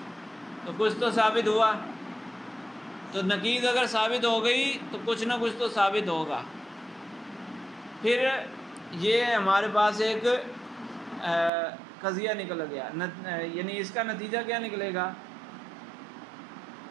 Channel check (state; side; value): drops out; left; at 11.5 s